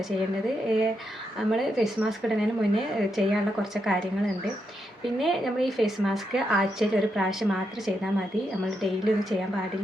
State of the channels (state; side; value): normal; both; correlation 0.82